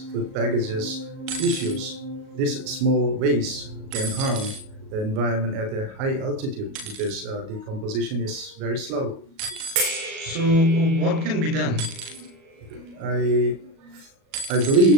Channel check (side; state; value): left; late; 37 ms